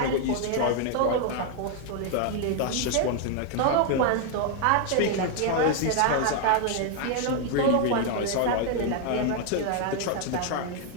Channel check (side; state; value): both; different; correlation 0.00